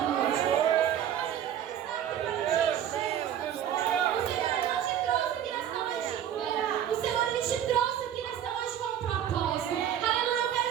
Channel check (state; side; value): quieter; left; 10.1 dB